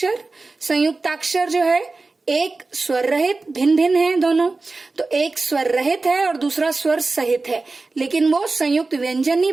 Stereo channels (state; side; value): quieter; left; 3.6 dB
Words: संयुक्ताक्षर जो है एक स्वर रहित, भिन्न भिन्न है दोनों, तो एक स्वर रहित है और दूसरा स्वर सहित है, लेकिन वो संयुक्त व्यंजन